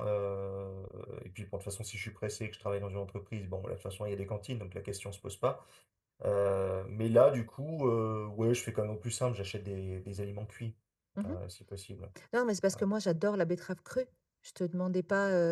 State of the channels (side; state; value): both; identical; correlation 1.00